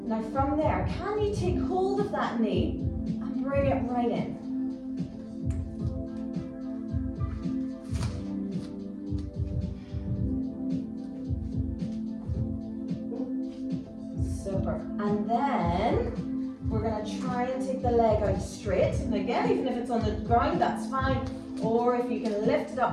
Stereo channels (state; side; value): identical; both; correlation 1.00